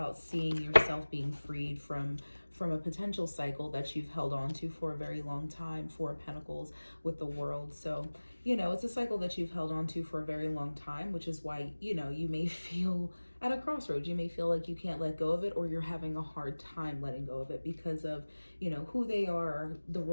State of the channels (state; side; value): inverted; both; correlation -1.00